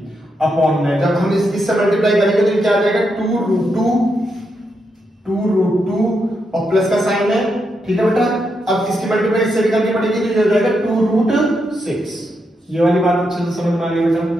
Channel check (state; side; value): normal; both; correlation 0.82